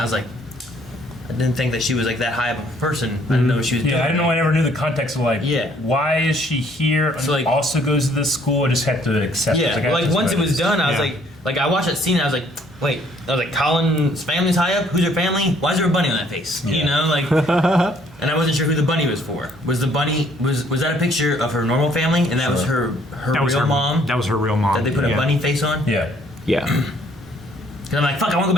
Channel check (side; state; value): both; normal; correlation 0.63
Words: was like, I didn't think that she was like that high of a person. I didn't know what she was doing. Yeah, I didn't know. I never knew the context of like, Yeah. why is she here? So, like- also goes to this school. I just had to accept Yeah, it. I like just once it was noticed. done, I was Yeah. like I watched that scene and I was like, wait, I was like, Colin's family's high up? Who's her family? Why is there a bunny on that face? You Yeah. know, like, and I wasn't sure who the bunny was for. Was the bunny, was that a picture of her normal family and that was her That was real her mom That was her real mom. that they put a Yeah. bunny face on? Yeah. Yeah. Because I'm like, fuck, I want to go